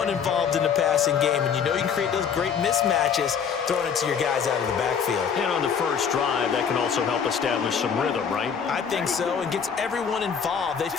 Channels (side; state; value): right; quieter; 7.0 dB